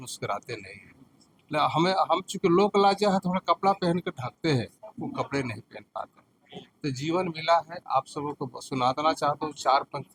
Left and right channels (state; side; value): identical; both; correlation 1.00